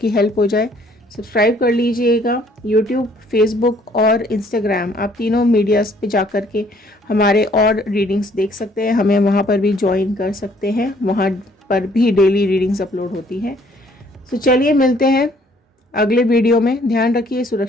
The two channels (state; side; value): normal; both; correlation 0.62